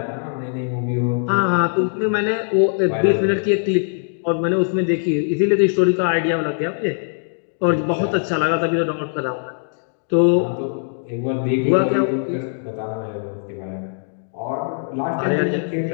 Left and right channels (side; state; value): right; silent; digital silence